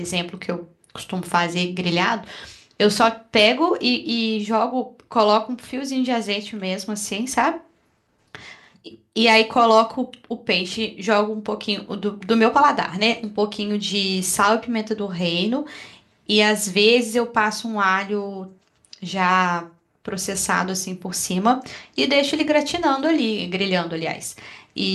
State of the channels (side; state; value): both; identical; correlation 1.00